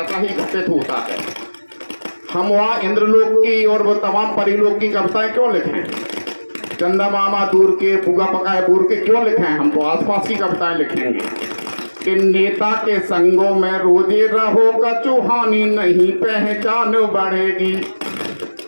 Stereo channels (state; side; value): inverted; both; correlation -1.00